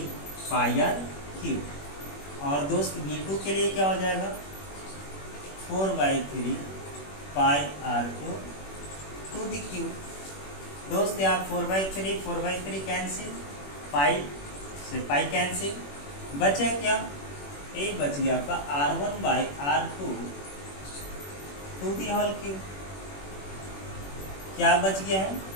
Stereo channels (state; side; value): late; right; 21 ms